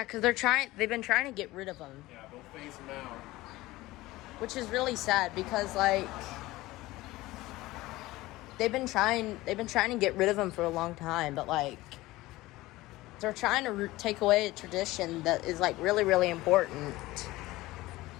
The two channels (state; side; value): quieter; right; 18.6 dB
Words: because they've been trying to get rid of them. Yeah, they'll phase them out. Which is really sad because like they've been trying to get rid of them for a long time, but like they're trying to take away a tradition that is like really, really important,